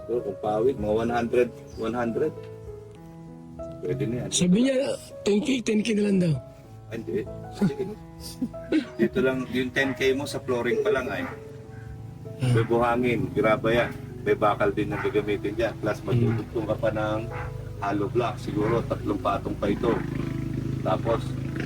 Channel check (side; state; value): both; identical; correlation 1.00